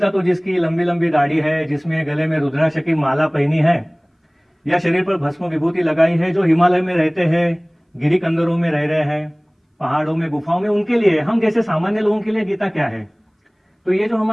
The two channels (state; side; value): identical; both; correlation 1.00